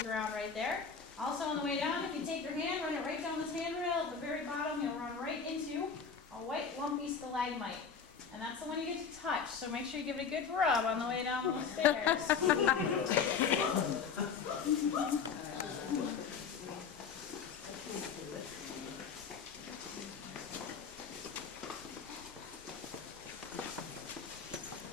ground right there. Also on the way down, if you take your hand, run it right down this handrail, at the very bottom, you'll run right into a white lumpy stalagmite. And that's the one you get to touch, so make sure you give it a good rub on the way down those stairs.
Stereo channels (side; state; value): right; quieter; 6.1 dB